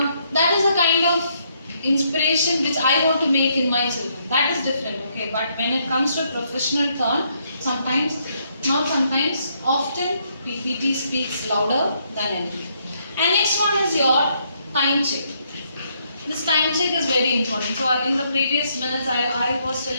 is a kind of inspiration which I want to make in my children. That is different, okay? But when it comes to professional turn, sometimes, not sometimes, often PPT speaks louder than anything. And next one is your time check. This time check is very important. So in the previous minutes I was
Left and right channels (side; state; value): both; inverted; correlation -0.73